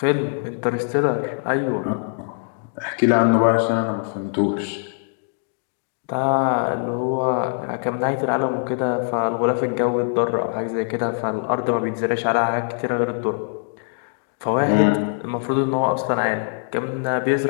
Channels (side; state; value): right; silent; digital silence